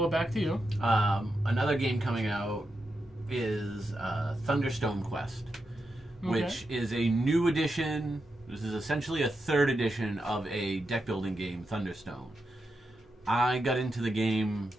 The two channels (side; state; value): both; normal; correlation 0.87